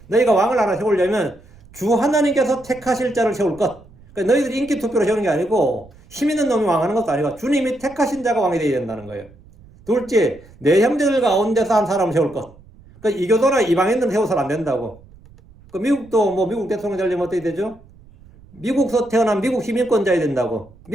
너희가 왕을 하나 세우려면 주 하나님께서 택하실 자를 세울 것. 그러니까 너희들이 인기 투표로 세우는 게 아니고 힘 있는 놈이 왕하는 것도 아니고 주님이 택하신 자가 왕이 되어야 된다는 거예요. 둘째, 내 형제들 가운데서 한 사람을 세울 것. 그러니까 이교도나 이방인들은 세워서는 안 된다고. 그 미국도 뭐 미국 대통령 되려면 어떻게 되죠? 미국에서 태어난 미국 시민권자야 된다고.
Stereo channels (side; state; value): right; noise; rumble, 25 dB below the sound